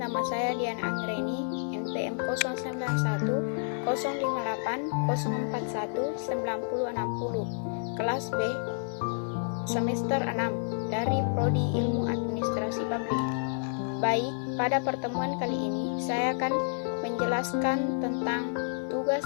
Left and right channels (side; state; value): right; silent; digital silence